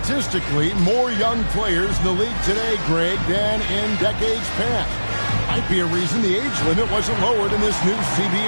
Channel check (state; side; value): inverted; both; correlation -1.00